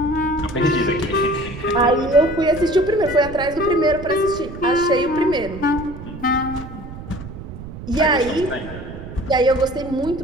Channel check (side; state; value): right; noise; rumble, 12 dB below the sound